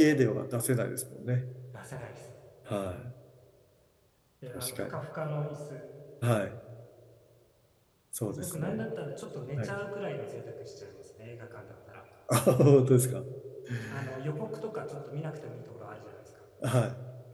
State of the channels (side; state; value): both; identical; correlation 1.00